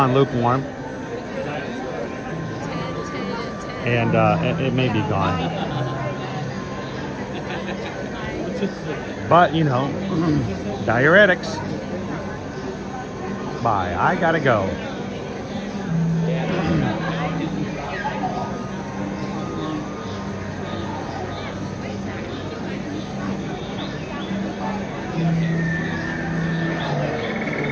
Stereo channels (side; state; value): both; identical; correlation 1.00